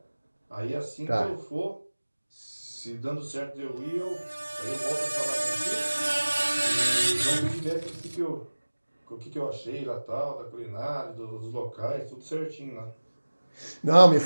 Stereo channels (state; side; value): inverted; both; correlation -1.00